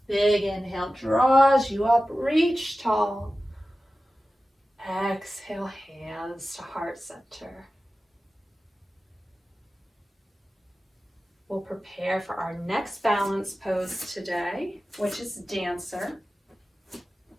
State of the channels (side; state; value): both; normal; correlation 0.95